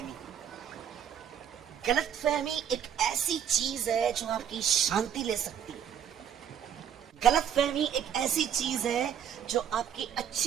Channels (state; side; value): quieter; left; 8.8 dB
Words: गलतफहमी एक ऐसी चीज है जो आपकी शांति ले सकती है। गलतफहमी एक ऐसी चीज है जो आपकी